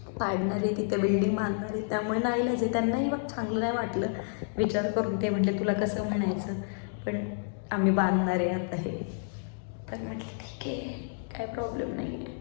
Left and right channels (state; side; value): silent; right; digital silence